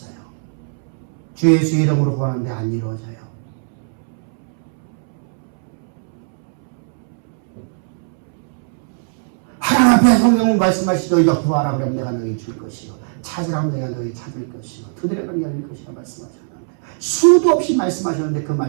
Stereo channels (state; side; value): silent; left; 66 dB below the other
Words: 주 예수 이름으로 구하는데 안 이루어져요. 하나님 앞에 성경은 말씀하시죠. 너희가 구하라 그러면 내가 너희 줄 것이요, 찾으라 하면 내가 너희 찾을 것이요, 두드리면 열릴 것이라 말씀하셨는데, 수도 없이 말씀하셨는데 그